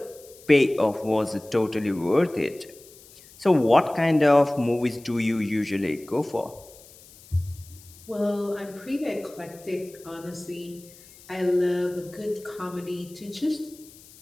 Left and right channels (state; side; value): noise; left; hiss, 22 dB below the sound